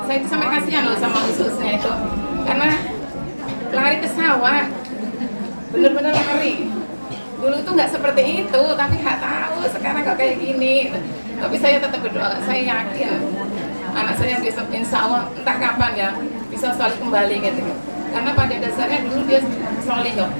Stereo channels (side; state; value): both; inverted; correlation -1.00